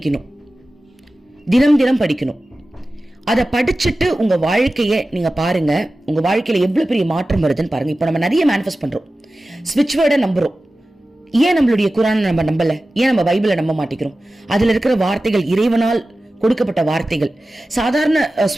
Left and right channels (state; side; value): normal; both; correlation 0.95